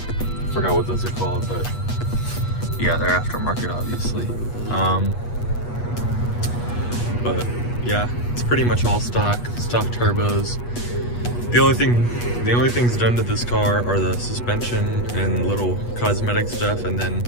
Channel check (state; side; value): late; right; 8.3 ms